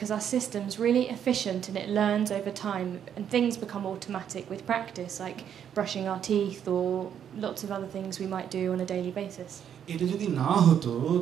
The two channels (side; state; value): left; quieter; 8.9 dB